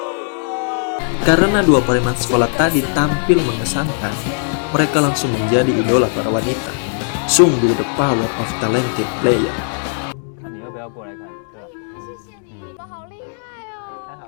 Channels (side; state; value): right; silent; digital silence